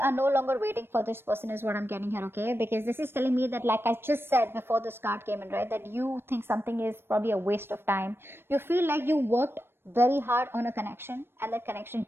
are no longer waiting for this person is what I'm getting here, okay? Because this is telling me that, like I just said before this card came in, right? That you think something is probably a waste of time. You feel like you worked very hard on a connection and that connection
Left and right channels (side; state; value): left; late; 0.11 ms